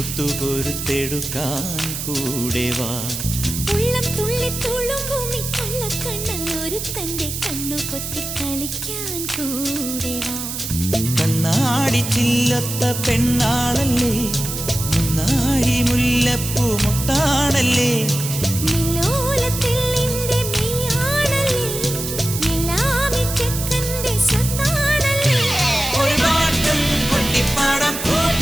കൂടെ വാ. ഉള്ളം തുള്ളി തുളുമ്പുമി കള്ളക്കണ്ണൻ ഒരു തന്റെ കണ്ണു പൊത്തി കളിക്കാൻ കൂടെ വാ. കണ്ണാടി ചില്ലത്ത പെണ്ണാളല്ലേ, മുന്നാഴി മുല്ലപ്പൂ മുട്ടാണല്ലേ,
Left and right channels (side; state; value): right; noise; hiss, 6 dB below the sound